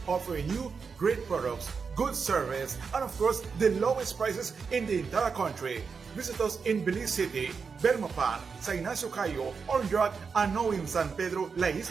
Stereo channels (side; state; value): left; quieter; 5.4 dB